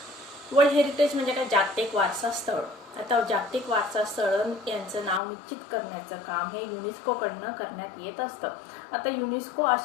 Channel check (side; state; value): right; drops out; at 5.2 s